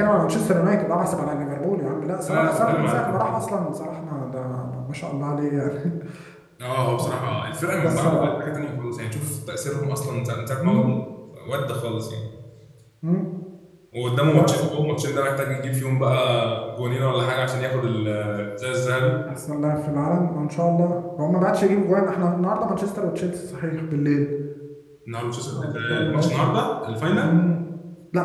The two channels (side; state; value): both; identical; correlation 1.00